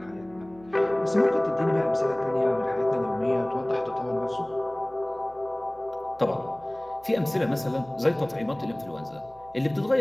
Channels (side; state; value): right; noise; hum, 24 dB below the sound